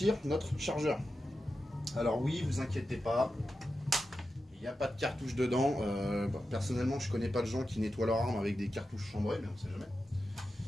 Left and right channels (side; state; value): both; normal; correlation 0.91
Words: notre chargeur. Alors oui, vous inquiétez pas, il n'y a pas de cartouche dedans. Personnellement, je connais pas de gens qui nettoient leur arme avec des cartouches chambrées, mais on sait jamais.